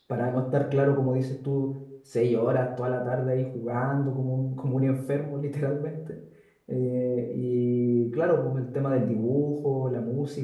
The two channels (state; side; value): identical; both; correlation 1.00